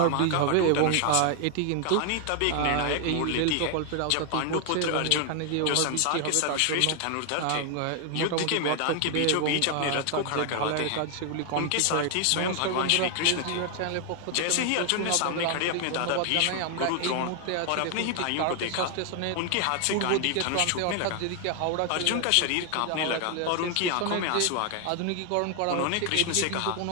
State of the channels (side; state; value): both; different; correlation 0.00